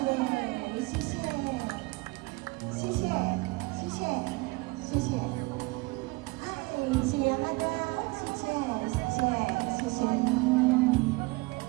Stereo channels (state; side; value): quieter; left; 24.6 dB